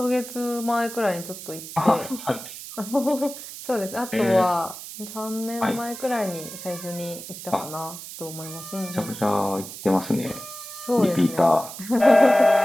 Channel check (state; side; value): noise; right; hiss, 12 dB below the sound